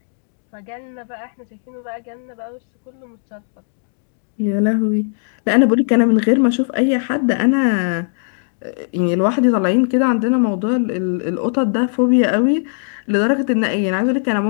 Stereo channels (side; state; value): right; silent; digital silence